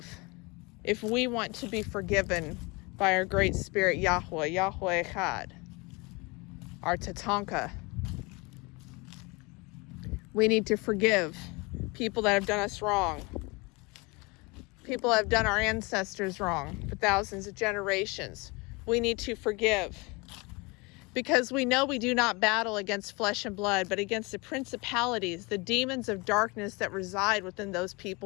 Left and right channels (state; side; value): quieter; right; 26.8 dB